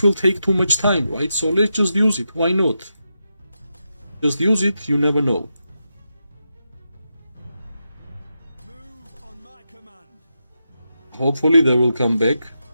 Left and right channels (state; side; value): inverted; both; correlation -0.87